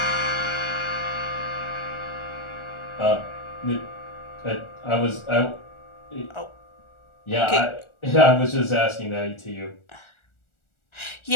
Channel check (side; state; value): right; late; 1.4 ms